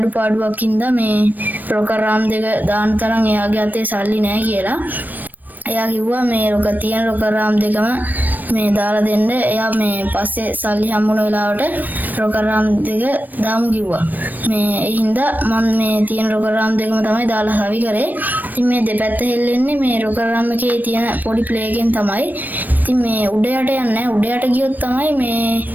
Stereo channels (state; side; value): late; left; 0.087 ms